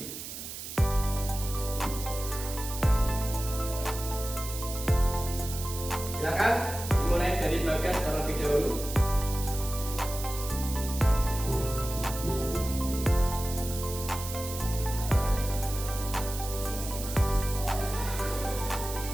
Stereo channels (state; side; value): noise; right; hiss, 9 dB below the sound